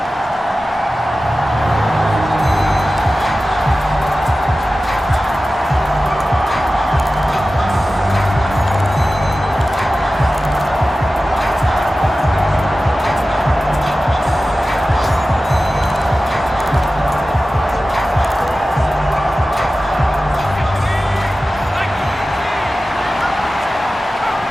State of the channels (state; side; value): normal; both; correlation 0.95